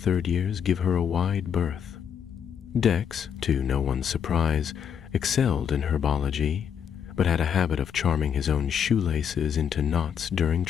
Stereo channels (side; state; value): right; quieter; 7.9 dB